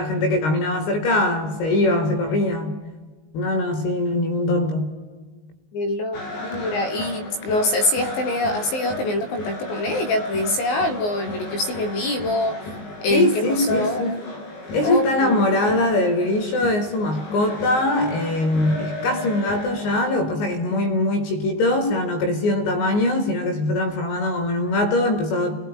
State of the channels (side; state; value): right; late; 19 ms